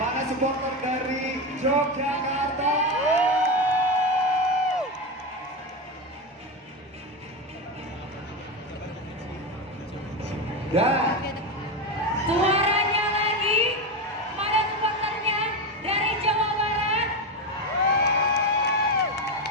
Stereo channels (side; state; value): both; normal; correlation 0.15